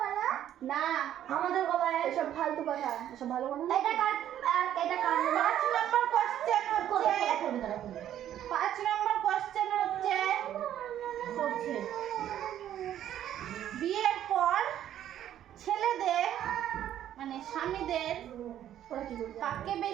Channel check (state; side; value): quieter; left; 11.2 dB